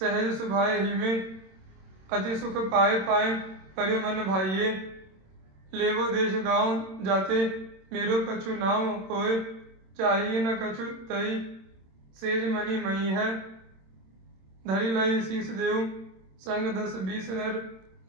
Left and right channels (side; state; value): left; late; 27 ms